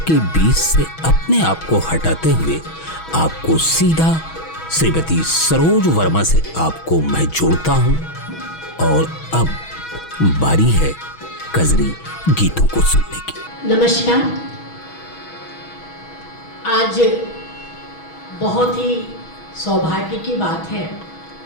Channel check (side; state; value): right; late; 6.2 ms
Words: बीच से अपने आप को हटाते हुए आपको सीधा श्रीमती सरोज वर्मा से आपको मैं जोड़ता हूं और अब बारी है कजरी गीतों को सुनने की। नमस्कार। आज बहुत ही सौभाग्य की बात है,